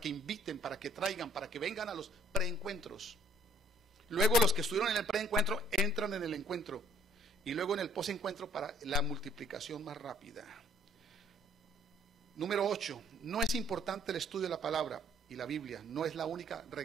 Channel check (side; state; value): both; normal; correlation 0.60